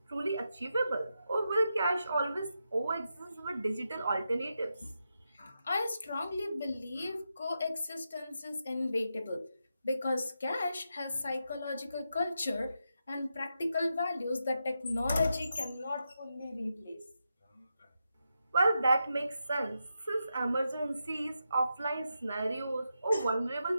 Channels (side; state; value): both; inverted; correlation -0.86